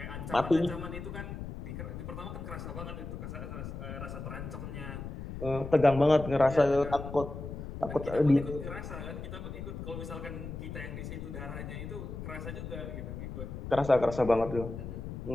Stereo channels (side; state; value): left; noise; rumble, 8 dB below the sound